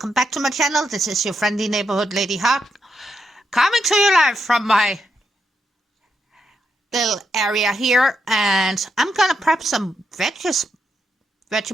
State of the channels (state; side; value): normal; both; correlation 0.82